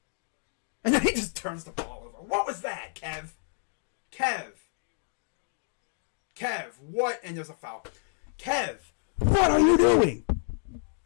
And then he just turns the ball over. What was that, Kev? Kev, what? And there's a foul. Kev, what are you doing?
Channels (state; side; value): silent; right; 58 dB below the other